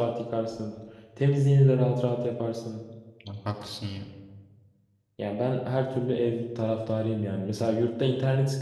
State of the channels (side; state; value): both; identical; correlation 1.00